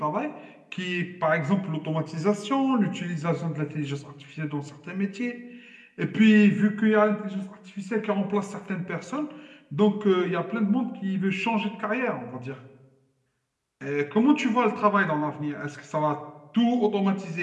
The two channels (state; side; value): identical; both; correlation 1.00